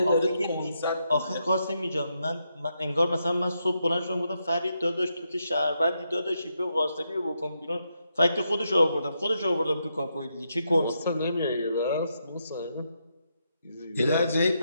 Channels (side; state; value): both; inverted; correlation -0.82